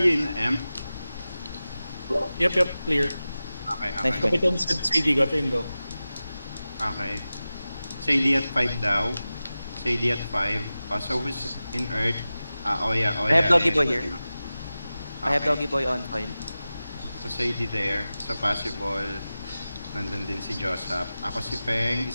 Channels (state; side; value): inverted; both; correlation -0.95